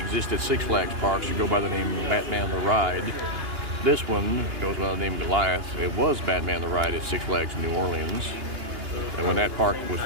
at Six Flags parks should go by the name Batman the Ride. This one goes by the name Goliath. It was Batman the Ride at Six Flags New Orleans. And when that park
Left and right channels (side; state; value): left; late; 2.8 ms